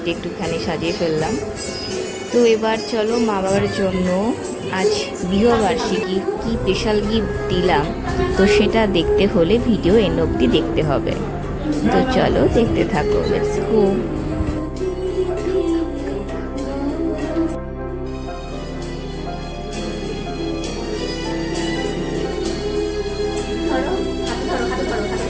দিয়ে একটুখানি সাজিয়ে ফেললাম। তো এবার চলো মা বাবার জন্য আজ বিবাহবার্ষিকী কি স্পেশাল গিফট দিলাম, তো সেটা দেখতে হলে ভিডিও এন্ড অবধি দেখতে হবে। তো চলো দেখতে থাকো, লেটস গো।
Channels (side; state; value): both; identical; correlation 1.00